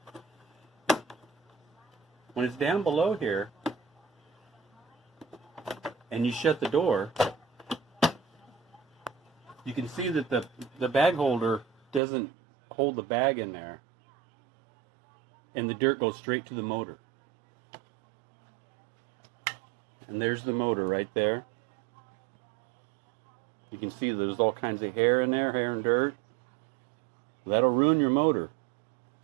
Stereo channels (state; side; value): drops out; left; at 12.0 s